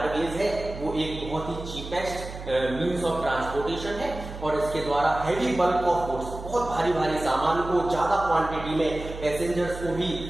है वो एक बहुत ही चीपेस्ट मींस ऑफ ट्रांसपोर्टेशन है, और इसके द्वारा हैवी बल्क ऑफ गुड्स, बहुत भारी भारी सामान को ज्यादा क्वांटिटी में पैसेंजर्स को भी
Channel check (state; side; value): noise; right; hum, 11 dB below the sound